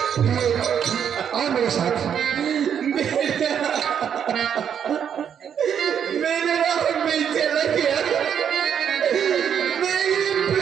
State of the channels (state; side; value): quieter; left; 8.3 dB